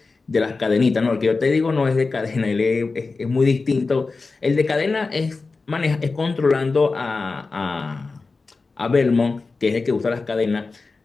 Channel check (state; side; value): quieter; right; 4.0 dB